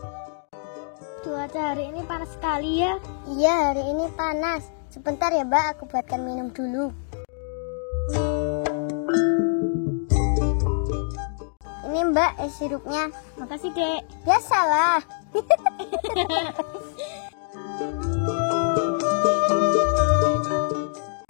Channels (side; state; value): right; silent; 62 dB below the other